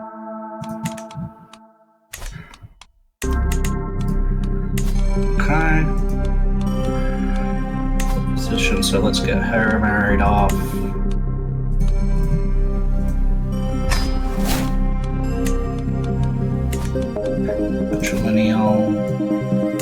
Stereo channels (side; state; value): both; identical; correlation 1.00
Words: Okay. Position, so let's get her married off. Matrilineal.